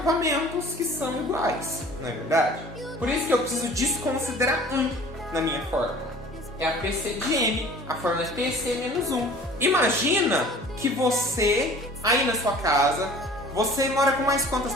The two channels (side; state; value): both; normal; correlation 0.46